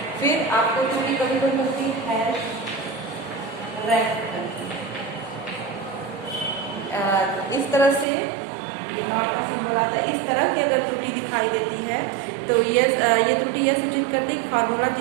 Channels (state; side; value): drops out; left; at 8.1 s